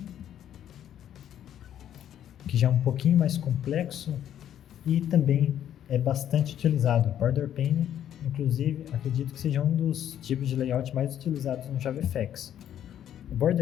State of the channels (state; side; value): quieter; right; 10.5 dB